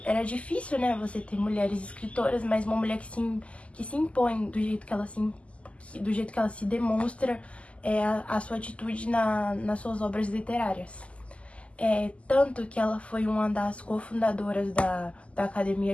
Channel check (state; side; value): late; right; 0.060 ms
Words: era difícil, né? Você ter mulheres escritoras, mas uma mulher que se impõe do jeito que ela se demonstra a sua atitude nas suas obras literárias. Tanto que ela foi uma das cofundadoras da